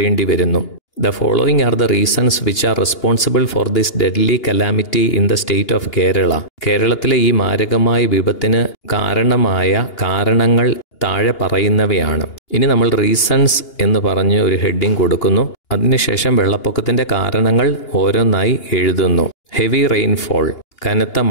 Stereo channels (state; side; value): late; right; 2.8 ms